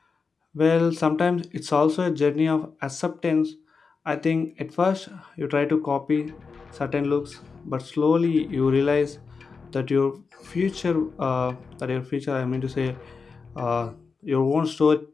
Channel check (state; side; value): quieter; right; 4.9 dB